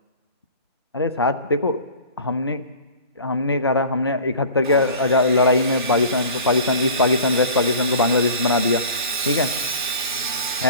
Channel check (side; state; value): both; inverted; correlation -0.41